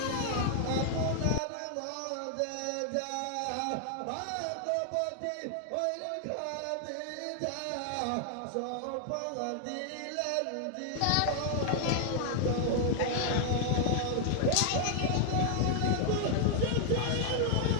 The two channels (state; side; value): different; both; correlation 0.00